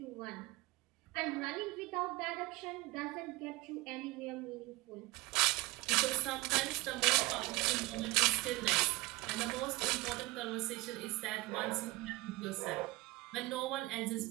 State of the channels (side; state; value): left; quieter; 21.3 dB